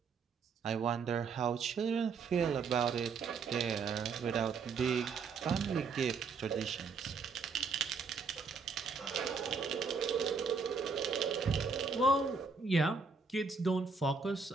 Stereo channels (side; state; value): left; quieter; 4.9 dB